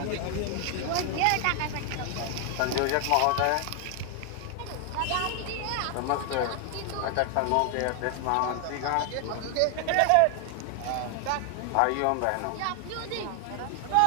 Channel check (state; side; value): different; both; correlation 0.00